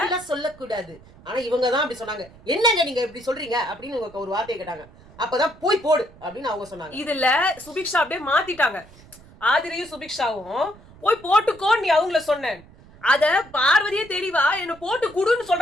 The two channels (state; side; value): noise; right; rumble, 23 dB below the sound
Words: சொல்லக்கூடாது. ஆனா இவங்க தான் அப்படி சொன்னாங்க. என்னங்க நீங்க இப்படி சொல்றீங்க அப்படின்னு இவங்க ஒரு வார்த்தையை கேட்டாங்க. அப்பதான் போய் போடு அப்படின்னு அவங்க சொன்னாங்க. இதுல சுபிக்ஷா அப்படியே மாத்திட்டாங்க. ஆதிரையும் சுபிக்ஷாவும் போய் போட்டுக்கோ நீ அவங்கள சொன்னேன். அத பார்வதியே தெரியவா என்ன போட்டு குடுன்னு